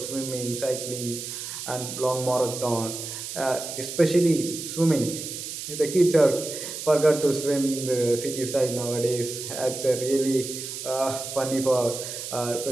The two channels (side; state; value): right; noise; hiss, 7 dB below the sound